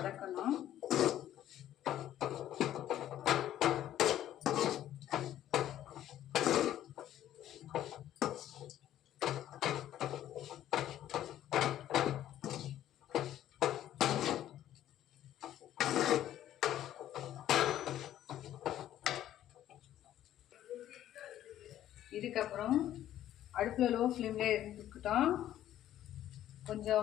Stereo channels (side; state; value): right; quieter; 12.2 dB